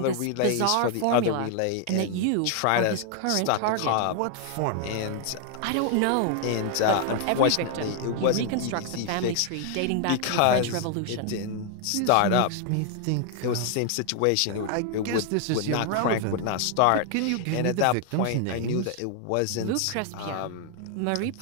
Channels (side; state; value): both; different; correlation 0.00